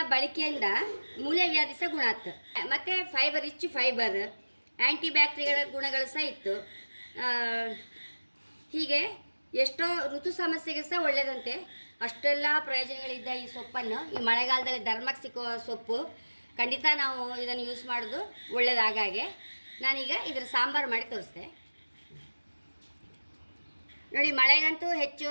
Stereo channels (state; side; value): inverted; both; correlation -1.00